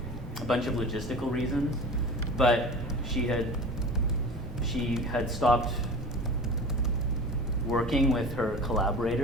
bunch of logistical reasons, but she had stopped working with her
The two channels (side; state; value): both; normal; correlation 0.36